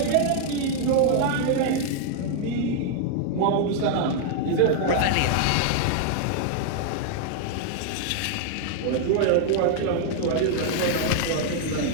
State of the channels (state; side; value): different; both; correlation 0.00